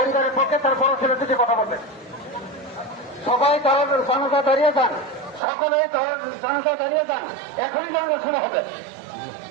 পক্ষে তার বড় ছেলে যদি কথা বলবেন। সবাই তার জানাজা দাঁড়িয়ে যান, সকলে তার জানাজা দাঁড়িয়ে যান, এখনই জানাজা শুরু হবে।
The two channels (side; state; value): left; drops out; at 5.4 s